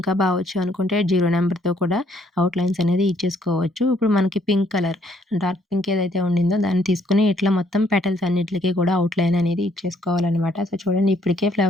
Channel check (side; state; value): both; normal; correlation 0.67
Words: వచ్చు అనుకుంటే 0 నంబర్‌తో కూడా అవుట్‌లైన్స్ అనేది ఇచ్చేసుకోవచ్చు. ఇప్పుడు మనకి పింక్ కలర్ డార్క్ పింక్ ఏదైతే ఉండిందో దాన్ని తీసుకొని ఇట్లా మొత్తం పెటల్స్ అన్నిట్లికి కూడా అవుట్‌లైన్ అనేది ఇచ్చేసుకోవాలనమాట. సో, చూడండి ఇప్పటికే